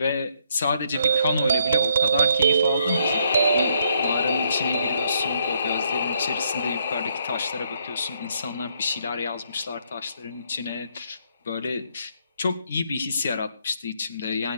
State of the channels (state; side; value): inverted; both; correlation -0.71